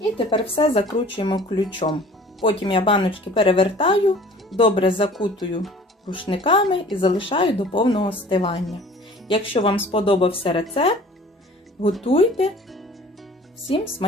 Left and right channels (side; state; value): both; normal; correlation 0.48